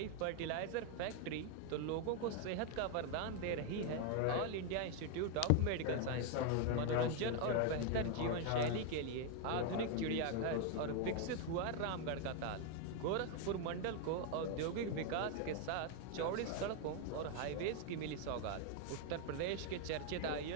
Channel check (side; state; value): both; different; correlation 0.01